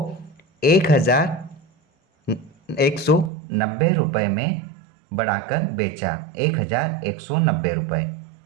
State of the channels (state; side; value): drops out; left; at 3.3 s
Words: 1190 रुपये में बढ़ाकर बेचा, 1190 रुपये।